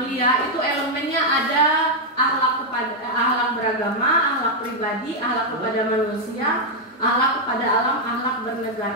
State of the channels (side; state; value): both; normal; correlation -0.01